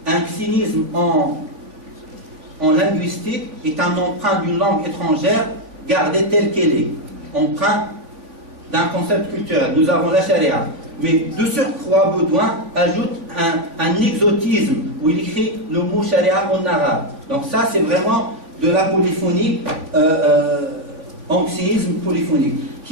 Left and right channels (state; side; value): late; left; 3.5 ms